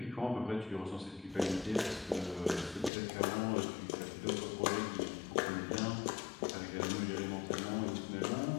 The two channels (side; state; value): right; drops out; at 2.9 s